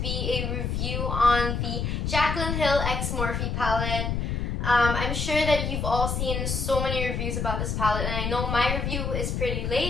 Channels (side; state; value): left; noise; rumble, 1 dB below the sound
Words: be a review on the Jaclyn Hill x Morphe palette. I'm sure that you've all seen so many reviews about this palette, and I know my review is pretty